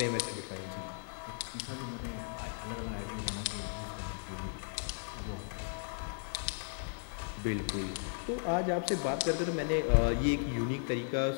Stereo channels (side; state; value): right; silent; 54 dB below the other